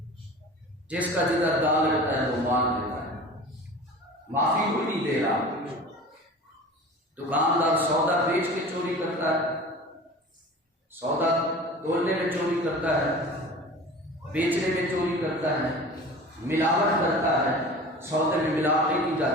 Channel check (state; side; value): normal; both; correlation 0.38